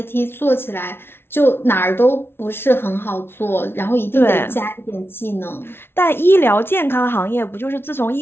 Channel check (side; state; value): right; late; 0.11 ms